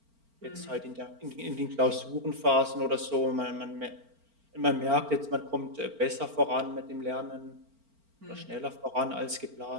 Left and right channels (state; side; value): late; left; 4.4 ms